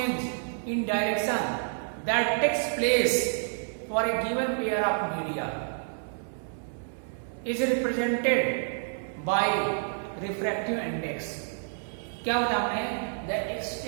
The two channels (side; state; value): left; silent; digital silence